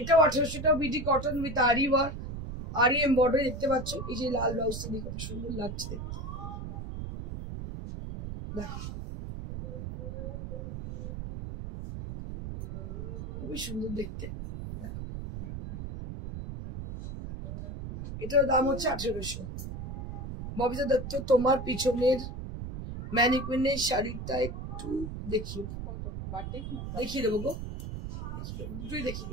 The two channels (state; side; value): noise; right; rumble, 7 dB below the sound